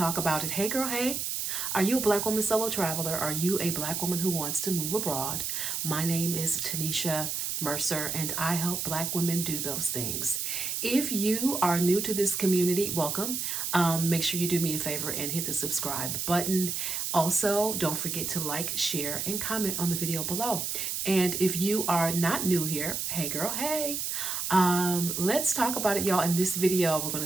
about it. Hey girl, hey. Are you a Black woman solo traveler? Are you a Black woman who wants to move abroad? My name is Tanisha Mercer, and I help Black women do those things. If you are new to this community, welcome. Make sure you do me a favor and hit the subscribe button. Also, don't forget to like, share, and comment on the video below. And if you are not new here, hey girl, hey. Let's talk about it, y'all. In this video, we're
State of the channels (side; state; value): right; noise; hiss, 2 dB below the sound